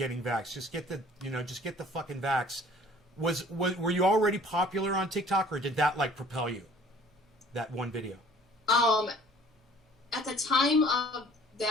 vaxxed? Just get the fucking vax. Were you already popular on TikTok, or did that like propel you? That one video? At the time of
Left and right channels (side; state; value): both; normal; correlation 0.52